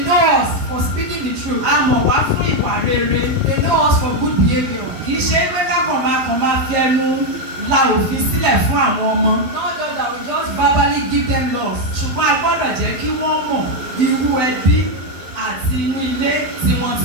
know us for speaking the truth. A mọ̀ wá fún ìwà rere. They know us for good behaviour. Kì í ṣe pé kákan máa fi ẹnu la òfin sílẹ̀ fún àwọn ọmọ. Not just that we just verbally give them laws. Ṣùgbọ́n a gbọ́dọ̀ jẹ́ kí wọ́n mọ̀ irú ẹbí àti inú ilé tí wọ́n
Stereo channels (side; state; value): left; late; 12 ms